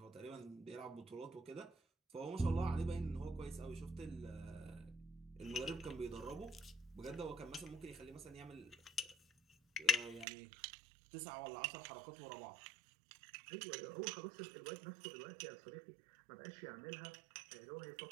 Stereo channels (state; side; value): drops out; left; at 10.2 s